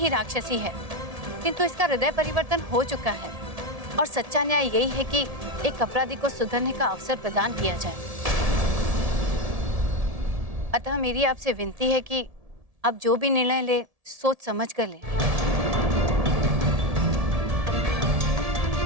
राक्षसी है, किंतु इसका हृदय परिवर्तन हो चुका है और सच्चा न्याय यही है कि एक अपराधी को सुधरने का अवसर प्रदान किया जाए। अतः मेरी आपसे विनती है कि आप जो भी निर्णय ले, सोच समझ कर ले।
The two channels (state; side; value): late; left; 1.7 ms